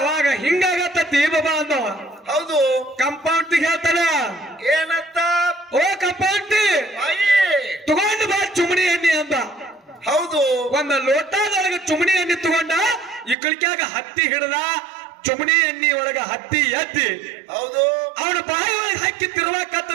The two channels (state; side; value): drops out; left; at 13.4 s